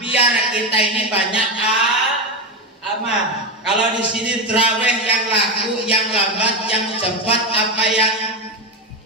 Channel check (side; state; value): both; normal; correlation 0.13